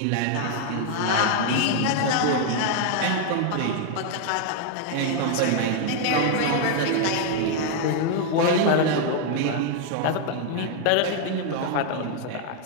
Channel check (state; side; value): different; both; correlation 0.00